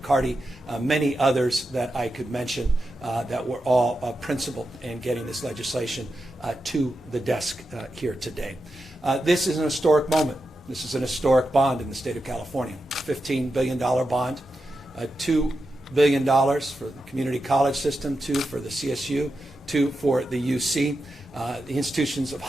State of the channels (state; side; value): normal; both; correlation 0.89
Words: many others that I could mention that were all principled in getting this legislation to the desk here today. This is an historic moment. This is an historic bond in the state of California. $15 billion bond, $2 billion for the community college system, $2 for the CSU, $2 for the UC. The institutions of